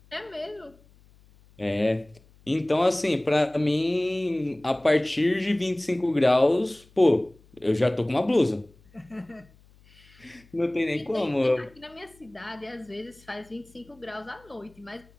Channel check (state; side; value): noise; left; hum, 28 dB below the sound